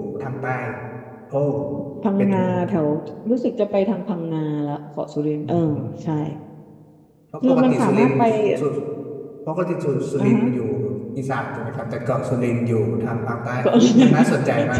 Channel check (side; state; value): both; identical; correlation 1.00